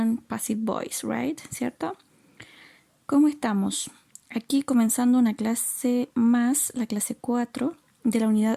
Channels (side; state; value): both; identical; correlation 1.00